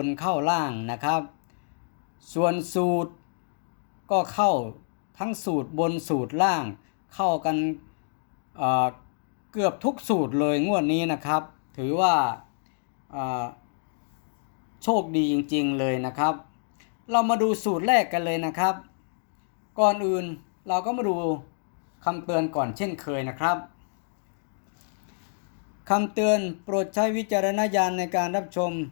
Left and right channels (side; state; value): right; silent; digital silence